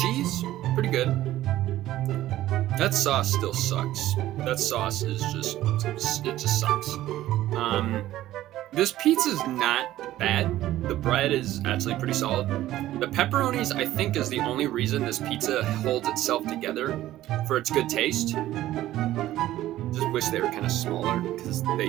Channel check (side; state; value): left; quieter; 14.4 dB